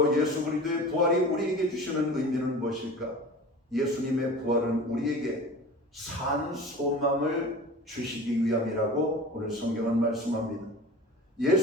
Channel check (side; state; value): both; normal; correlation 0.37